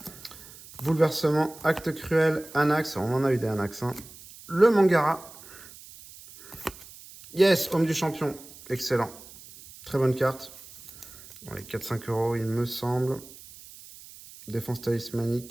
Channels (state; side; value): noise; right; hiss, 19 dB below the sound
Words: Bouleversement, acte cruel, Anax. On en a eu des Anax. Hein. Le Mangara. Yes, homme du champion. Excellent. Très bonne carte. Dans les 4-5 euros, il me semble. Défense